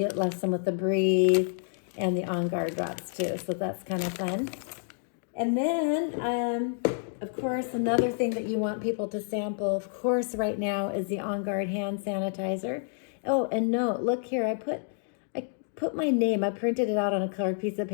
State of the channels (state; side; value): silent; right; digital silence